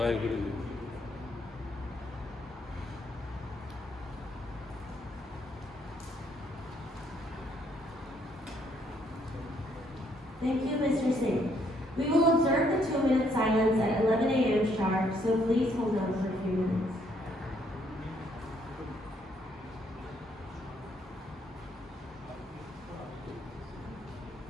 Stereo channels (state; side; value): normal; both; correlation 0.70